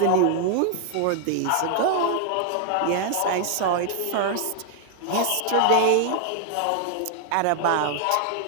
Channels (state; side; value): different; both; correlation 0.00